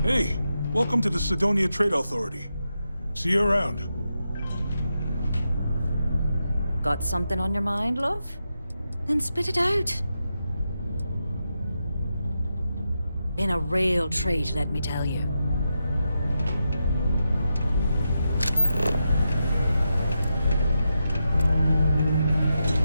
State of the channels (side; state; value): both; inverted; correlation -0.87